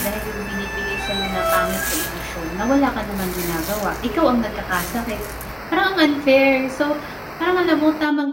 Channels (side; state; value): both; identical; correlation 1.00